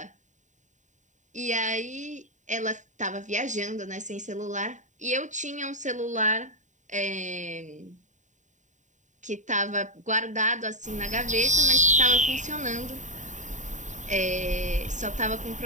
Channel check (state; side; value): late; left; 0.36 ms